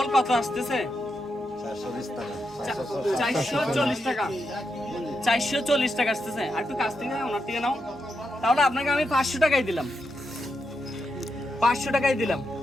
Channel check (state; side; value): normal; both; correlation 0.85